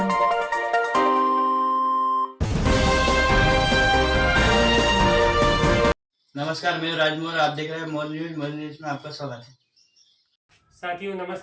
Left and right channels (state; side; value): identical; both; correlation 1.00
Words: नमस्कार, मैं राजमोहन, आप देख रहे हैं मोर न्यूज में आपका स्वागत है। साथियों